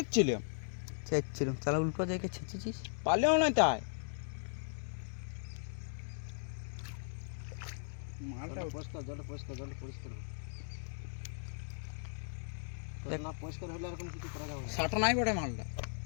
শালা উল্টো জায়গায় ছেঁচেছিস পালেও না তাই মালটা পরিষ্কার জল পরিষ্কার না পরিষ্কার হলে এরকম কিছু করা যাবে না সাটা নাই বড় মালটা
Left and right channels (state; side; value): silent; right; digital silence